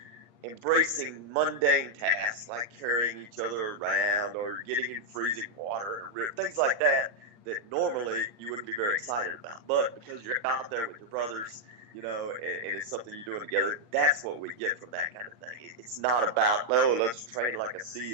embracing mundane tasks like carrying each other around or getting in freezing water or things like that normally you wouldn't be very excited about. But because you're out there with your brothers, and it's something you're doing together, that's what we get from that kind of thing. It's not about, let's train like a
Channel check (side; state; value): left; late; 8.6 ms